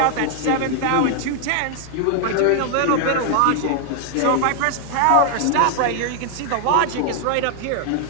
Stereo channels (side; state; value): both; different; correlation 0.00